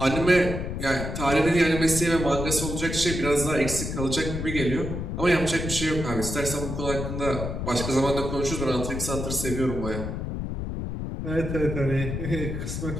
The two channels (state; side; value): noise; left; rumble, 4 dB below the sound